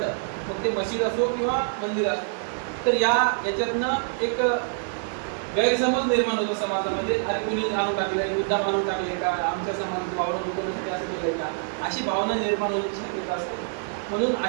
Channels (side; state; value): left; silent; digital silence